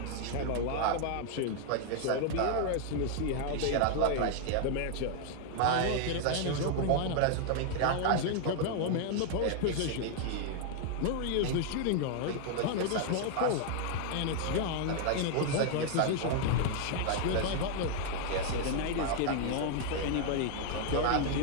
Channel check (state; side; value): different; both; correlation 0.00